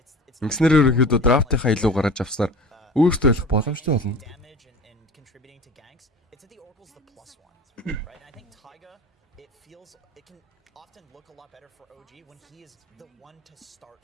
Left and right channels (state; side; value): normal; both; correlation 0.37